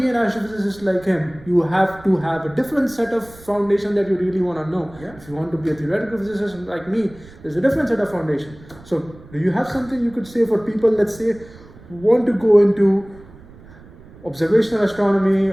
an astrophysicist like him, you have to have a different set of foundation that you really want to know. Yeah. If you want to be a theoretical physicist like me, there's a different set of foundation. So do you have something you could say for people, let's say, who want to go into observational astronomy,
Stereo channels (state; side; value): noise; right; rumble, 21 dB below the sound